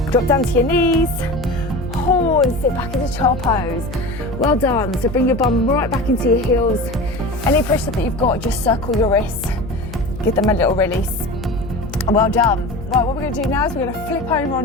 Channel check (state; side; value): noise; left; hum, 12 dB below the sound